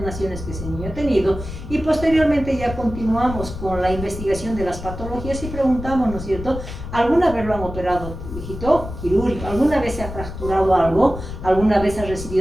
que ese niño ha tenido y posteriormente ya continuamos con la investigación de las patologías y preguntamos, ¿no es cierto? ¿Alguna vez lo han operado, hijito? Quirúrgico. ¿Alguna vez se ha fracturado algo? ¿Alguna vez ha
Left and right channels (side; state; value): left; noise; rumble, 9 dB below the sound